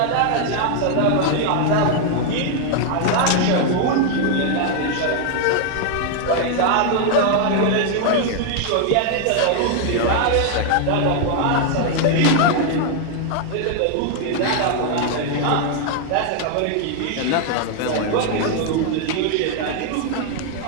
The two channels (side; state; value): both; different; correlation 0.00